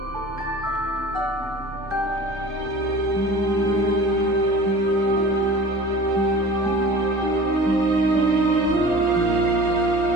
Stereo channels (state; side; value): normal; both; correlation 0.41